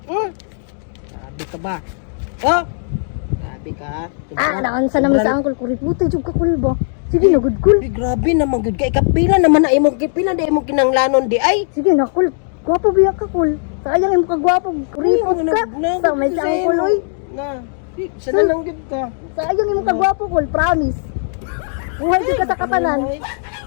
Sabi ka ba? Oh! Sabi ka. Ah, naansa naman sa angkol, kuripot jud ka kol ba? Sige na, good kol. Ay, grabe naman good kay kapila naman na imong kipila na imong kinanglanon di ay. Sige na kol, gwapo biya ka kol. Sayang imong kagwapo, kuripot ka. Sa may siyang kol, uy. Na. Sana lang gid ka. Sayang imong kagwapo kol, promise. Buhay jud ka sa katanan.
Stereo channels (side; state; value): right; silent; digital silence